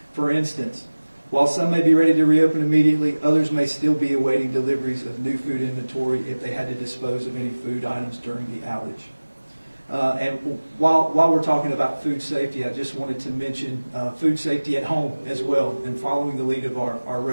For instance, while some may be ready to reopen immediately, others may still be awaiting deliveries of new food inventory if they had to dispose of any food items during the outage. And while we're talking about food safety, I just wanted to mention food safety at home as well, and following the lead of our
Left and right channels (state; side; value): inverted; both; correlation -1.00